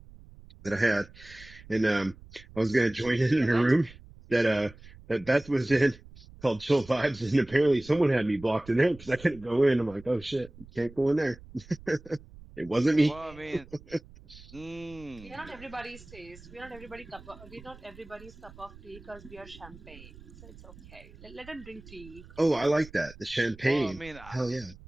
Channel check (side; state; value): right; noise; rumble, 20 dB below the sound